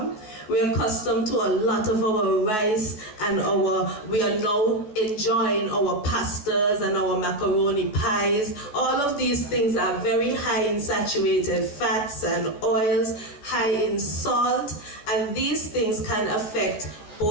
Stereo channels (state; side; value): late; right; 14 ms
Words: We are accustomed to a lot of our rice and we are now enjoying our pastas and our macaroni pies. All of these things are very high in saturated fats and oils, high in salt, and these things can affect